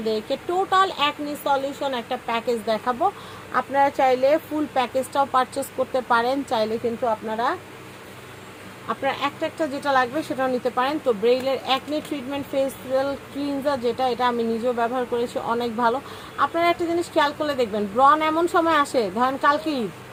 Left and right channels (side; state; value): both; identical; correlation 1.00